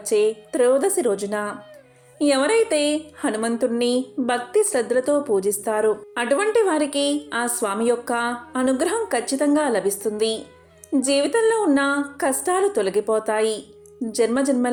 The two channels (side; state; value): both; identical; correlation 1.00